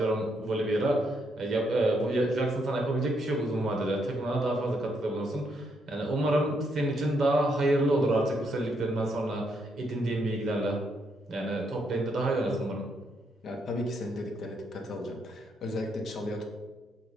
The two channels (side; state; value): both; normal; correlation 0.76